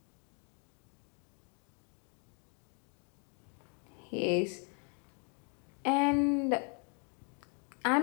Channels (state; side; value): quieter; right; 39.7 dB